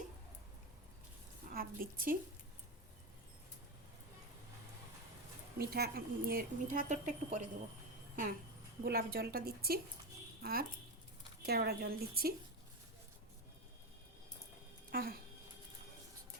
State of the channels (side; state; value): both; normal; correlation 0.15